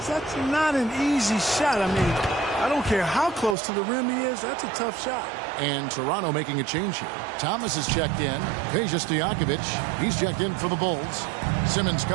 that's not an easy shot. I mean, I don't care how close to the rim he is. That's a tough shot. And Toronto making a change here. Thomas is checked in. Peja Stojakovic, he's checked in for the Bulls. Simmons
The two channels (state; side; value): drops out; left; at 3.6 s